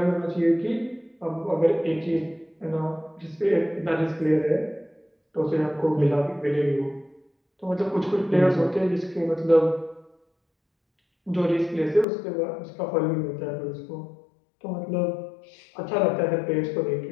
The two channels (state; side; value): drops out; right; at 12.1 s